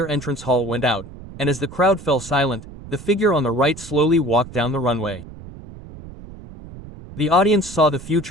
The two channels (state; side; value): noise; right; rumble, 15 dB below the sound